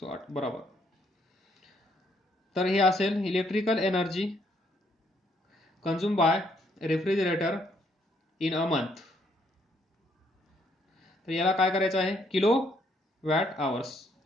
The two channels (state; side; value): normal; both; correlation 0.70